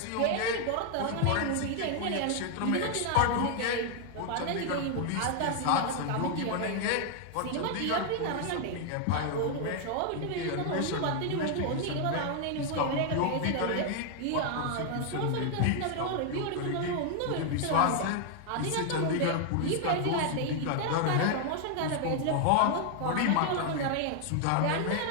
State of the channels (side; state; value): both; different; correlation 0.00